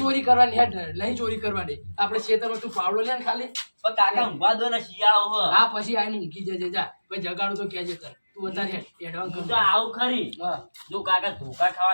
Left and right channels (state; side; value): inverted; both; correlation -1.00